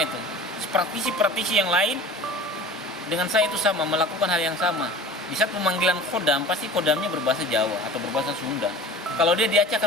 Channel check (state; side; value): normal; both; correlation 0.40